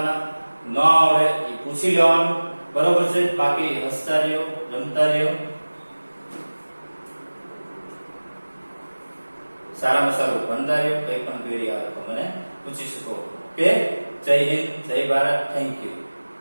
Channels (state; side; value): inverted; both; correlation -1.00